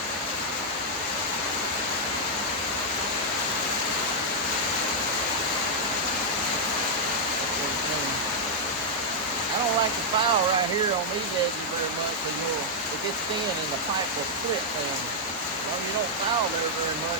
I don't like the file right here on these edges very much because it gets thin and the pipe will split them. Well, you don't file there very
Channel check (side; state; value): both; normal; correlation -0.04